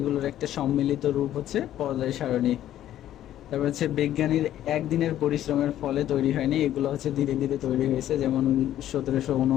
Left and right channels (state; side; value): quieter; right; 12.3 dB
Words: একটা সম্মিলিত রূপ হচ্ছে পর্যায় সারণী। তারপর হচ্ছে বিজ্ঞানীর একদিনের পরিশ্রমের ফলে তৈরি হয়নি, এগুলো হচ্ছে ধীরে ধীরে তৈরি হয়েছে। যেমন